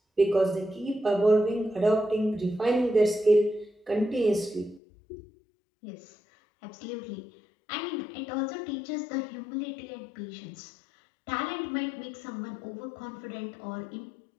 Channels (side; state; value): right; drops out; at 4.8 s